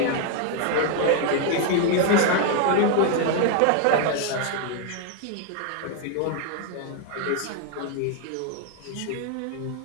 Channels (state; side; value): different; both; correlation 0.00